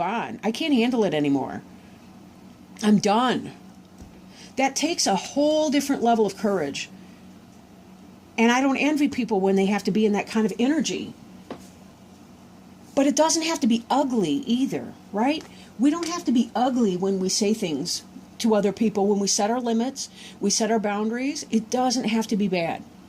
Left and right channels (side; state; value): both; identical; correlation 1.00